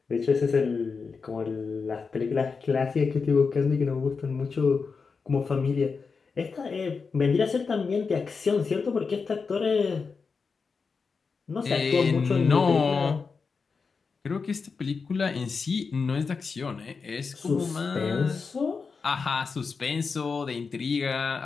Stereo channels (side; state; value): right; quieter; 5.0 dB